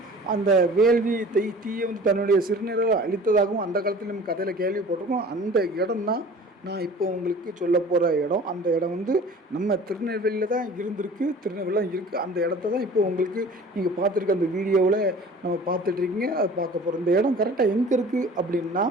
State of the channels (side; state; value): both; normal; correlation 0.44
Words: அந்த வேள்வி தீயை வந்து தன்னுடைய சிறுநீரால் அழித்ததாகவும் அந்த காலத்தில் நம்ம கதையில் கேள்விப்பட்டிருக்கோம். அந்த இடம் தான் நான் இப்போ உங்களுக்கு சொல்ல போகிற இடம். அந்த இடம் வந்து நம்ம திருநெல்வேலியில் தான் இருந்திருக்கு, திருநெல்வேலியில் தான் இருக்குது. அந்த இடத்த தான் இப்போ உங்களுக்கு நீங்கள் பார்த்துருக்க அந்த வீடியோவில் நம்ம பார்த்துட்ருக்கீங்க, அதை பார்க்க போகிறோம். இந்த இடம் கரெக்டாக எங்கே இருக்குது அப்படின்னா,